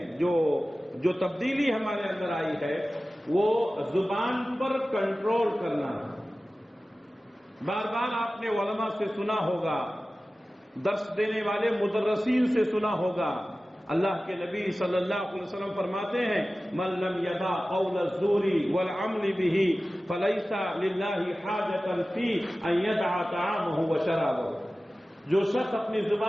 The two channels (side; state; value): both; normal; correlation 0.96